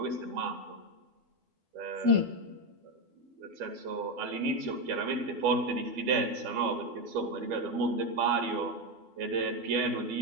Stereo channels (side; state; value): left; late; 12 ms